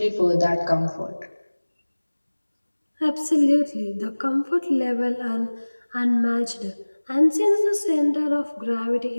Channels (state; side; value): inverted; both; correlation -1.00